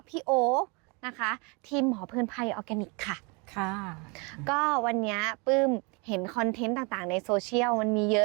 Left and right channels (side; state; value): left; quieter; 31.2 dB